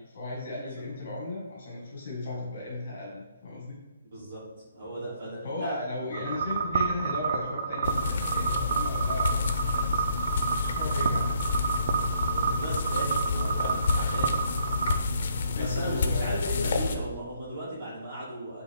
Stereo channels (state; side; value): inverted; both; correlation -0.67